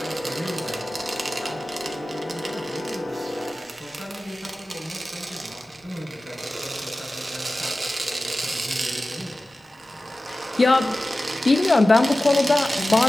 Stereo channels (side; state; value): both; normal; correlation 0.96